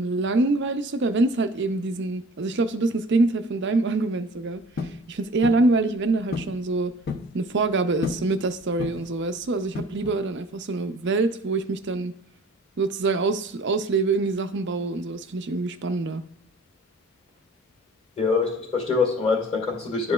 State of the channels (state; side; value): normal; both; correlation 0.47